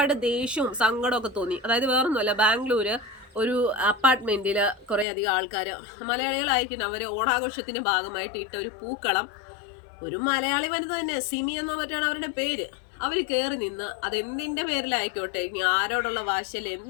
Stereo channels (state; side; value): drops out; right; at 5.1 s